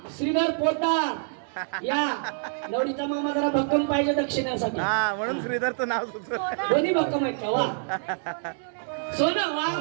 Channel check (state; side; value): silent; left; digital silence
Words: श्रीधर पोतदार या. नवरीचा मामा जरा भक्कम पाहिजे दक्षिणेसाठी. हा म्हणून श्रीधरचं नाव सुचलं. दोन्ही भक्कम आहेत का? वा सोनं वा